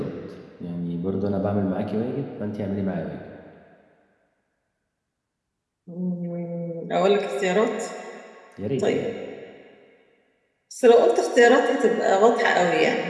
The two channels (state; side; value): identical; both; correlation 1.00